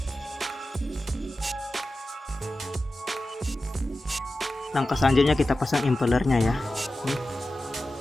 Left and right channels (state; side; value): normal; both; correlation 0.94